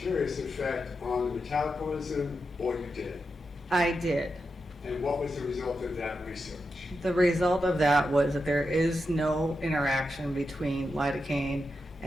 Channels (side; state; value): both; normal; correlation 0.87